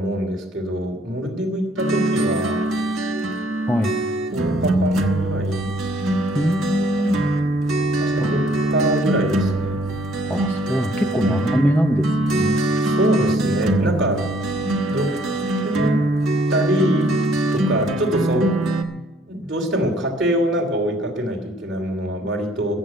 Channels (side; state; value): both; normal; correlation 0.63